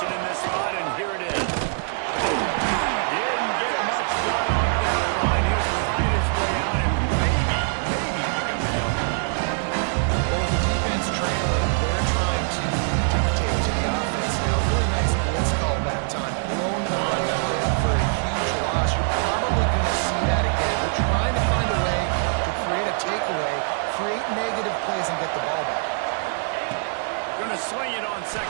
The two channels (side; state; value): left; silent; 63 dB below the other